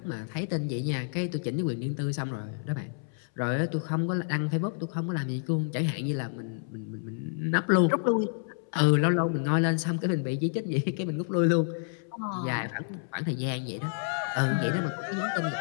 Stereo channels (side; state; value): right; silent; 58 dB below the other